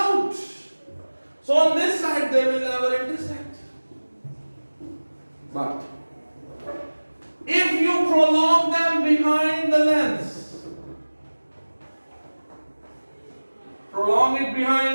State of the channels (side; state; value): both; inverted; correlation -1.00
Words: So on this side they will never intersect. But if you prolong them behind the lens, prolong it behind